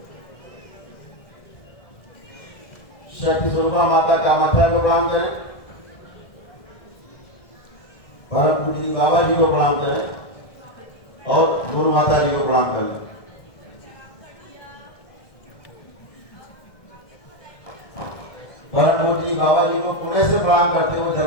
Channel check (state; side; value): late; right; 1.6 ms